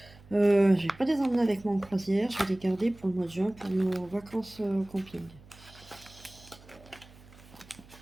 Je vais pas les emmener avec moi en croisière. Je vais les garder pour le mois de juin pour nos vacances camping.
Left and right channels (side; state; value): right; noise; hum, 23 dB below the sound